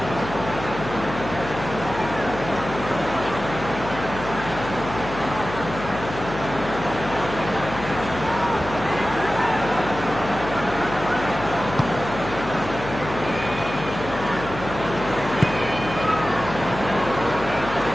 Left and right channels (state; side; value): noise; left; hum, 10 dB below the sound